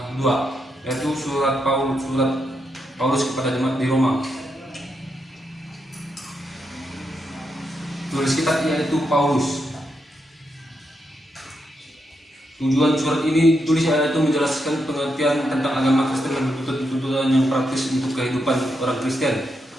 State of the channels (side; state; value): both; normal; correlation 0.83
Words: 2, yaitu surat Paulus kepada jemaat di Roma. Tulis kitab yaitu Paulus. Tujuan surat ini ditulis yaitu menjelaskan pengertian tentang agama Kristen dan tuntutan yang praktis untuk kehidupan orang Kristen.